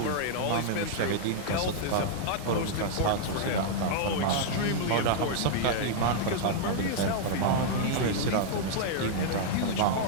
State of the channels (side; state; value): both; different; correlation -0.01